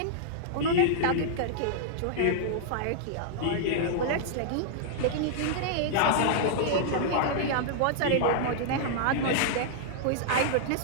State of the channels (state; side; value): different; both; correlation -0.01